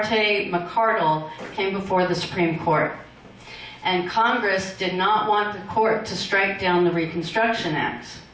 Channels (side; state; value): both; identical; correlation 1.00